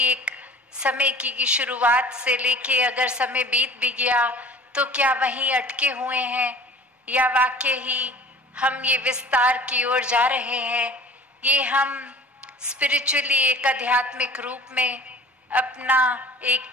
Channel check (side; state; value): both; normal; correlation 0.45